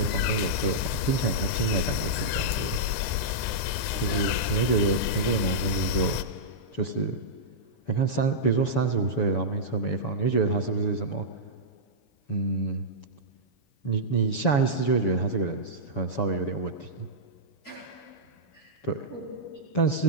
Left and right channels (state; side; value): late; right; 7.2 ms